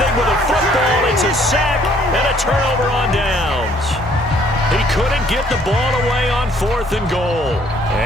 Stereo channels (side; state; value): both; normal; correlation 0.62